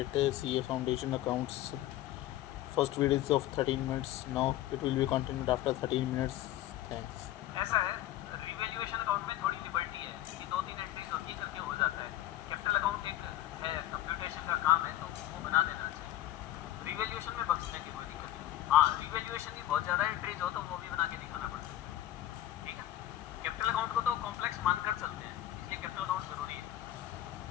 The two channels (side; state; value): right; quieter; 13.7 dB